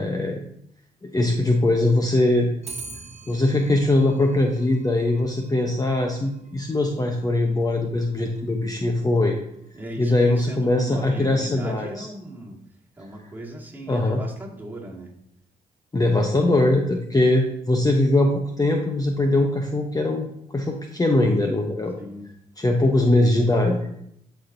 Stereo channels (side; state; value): both; normal; correlation 0.80